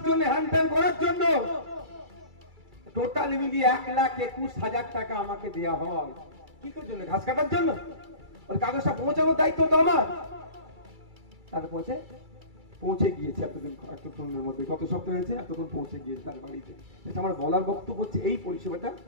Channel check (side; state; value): left; late; 2.3 ms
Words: জন্য, হ্যান্ডেল করার জন্য টোটাল মিলিয়ে 1,21,000 টাকা আমাকে দেওয়া হয়। কি করার জন্য? ঘাস কাটার জন্য। ওর কাগজটা পৌঁছানোর দায়িত্ব তো আমার। তার পৌঁছে গিয়েছে এতক্ষণের মধ্যে, কত সপ্তাহ হয়েছে, এতক্ষণ পৌঁছে গিয়েছে তার বাড়িতে। আমার বলার বক্তব্য হচ্ছে এই পরিষেবাটা